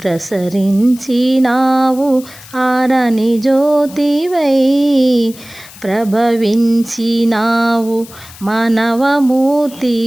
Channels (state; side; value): noise; left; hiss, 19 dB below the sound